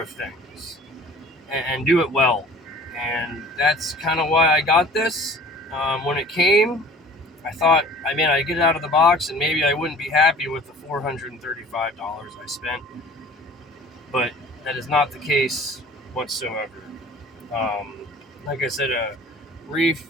things and do it well. And that's kind of why I got this. When it came, I thought, I'd get it out of the box and maybe I wouldn't be happy with the $435 I spent. But that is not the case whatsoever. Like I said, Reiff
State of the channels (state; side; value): normal; both; correlation 0.46